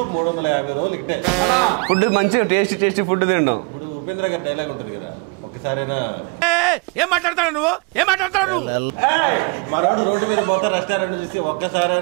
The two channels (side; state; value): left; quieter; 31.9 dB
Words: 350 రోజులు ఇట్టే ఫుడ్ మంచిగా టేస్టీ ఫుడ్ తింటాం. ఇప్పుడు ఉపేంద్ర గారి డైలాగ్ ఉంటుంది కదా, ఒక్కసారైనా ఏం మాట్లాడతాడు నువ్వు మరాడు రోడ్డు మీద పోతే రెస్టారెంట్ చూసి